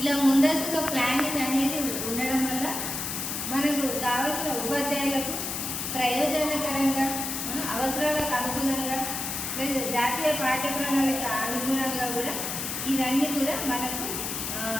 ముందస్తుగా ప్లానింగ్ అనేది ఉండడం వల్ల మనకు కావాల్సిన ఉపాధ్యాయులకు ప్రయోజనకరంగా, అవసరాలకు అనుగుణంగా, లేదా జాతీయ పాఠ్య ప్రణాళిక అనుగుణంగా కూడా ఇవన్నీ కూడా మనకు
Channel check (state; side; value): noise; left; hiss, 3 dB below the sound